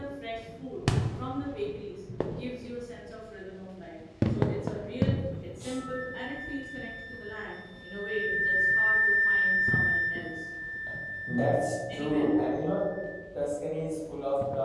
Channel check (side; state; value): both; identical; correlation 1.00